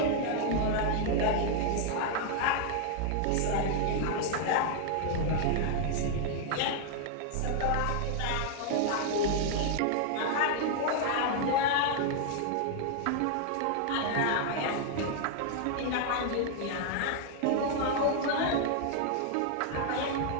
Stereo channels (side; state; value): both; different; correlation 0.00